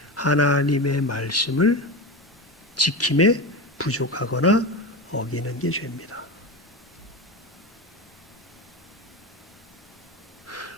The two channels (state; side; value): normal; both; correlation 0.22